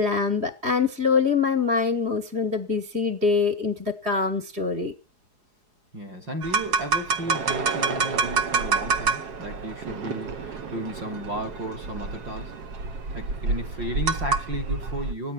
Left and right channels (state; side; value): late; left; 4.8 ms